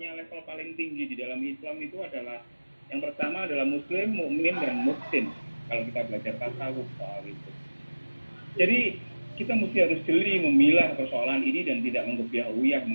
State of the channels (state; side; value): inverted; both; correlation -1.00